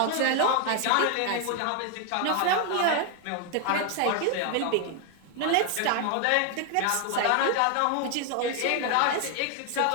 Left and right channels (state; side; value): different; both; correlation 0.01